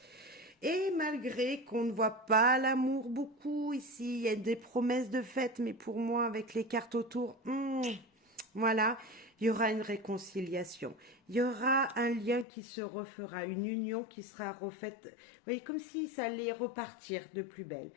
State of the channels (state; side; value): drops out; right; at 12.5 s